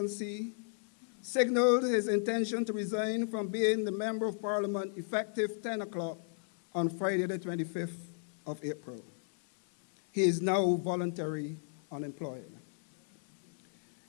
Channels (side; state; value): right; silent; 55 dB below the other